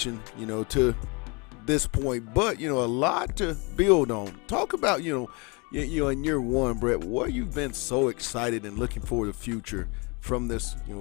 to this point, but a lot to build on. Talk about in year one, Brett, what you've been so excited and looking for the future from this,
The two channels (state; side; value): quieter; right; 29.9 dB